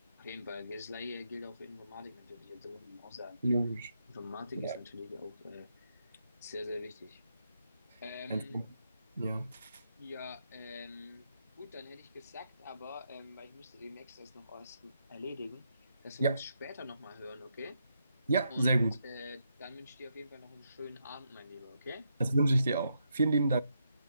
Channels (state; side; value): inverted; both; correlation -0.80